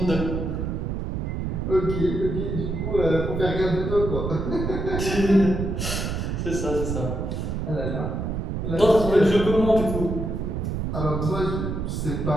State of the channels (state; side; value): noise; right; rumble, 2 dB below the sound